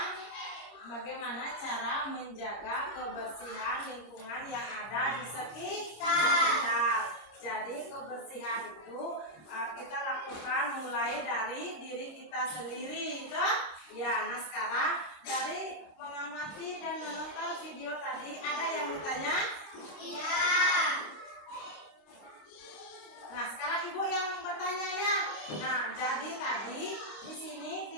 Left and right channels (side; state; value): right; late; 26 ms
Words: bagaimana cara menjaga kebersihan lingkungan yang ada di sekitar. Jadi kebersihan itu kita lakukan mulai dari diri kita sendiri, toh? Ya, nah sekarang dari mengamati dan menonton video tadi ada yang bertanya? Iya. Nah, sekarang Ibu yang bertanya ya. Nah, jadi tadi di sini